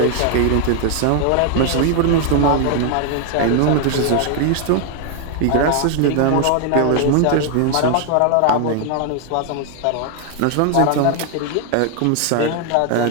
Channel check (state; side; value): different; both; correlation 0.00